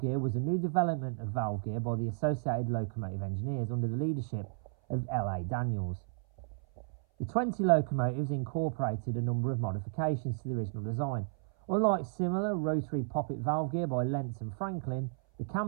gear was a new development of valve gear by the Associated Locomotive Engineers under the leadership of L.A. Daniels. The 20 locomotives incorporated a number of modifications to the original design. Unlike similar rotary poppet valve gear by Lentz and Franklin, the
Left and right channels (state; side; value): silent; left; 56 dB below the other